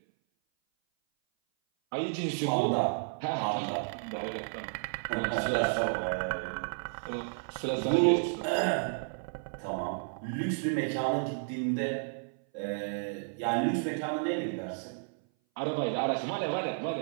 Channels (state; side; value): silent; left; 56 dB below the other